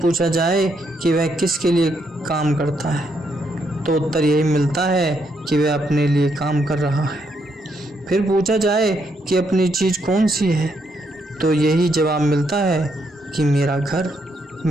जाए कि वह किसके लिए काम करता है, तो उत्तर यही मिलता है कि वह अपने लिए काम कर रहा है। फिर पूछा जाए कि अपनी चीज़ कौन सी है, तो यही जवाब मिलता है कि मेरा घर,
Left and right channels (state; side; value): normal; both; correlation 0.76